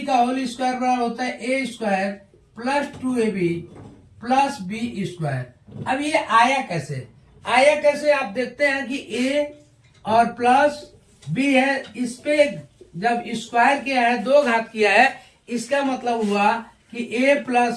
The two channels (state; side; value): identical; both; correlation 1.00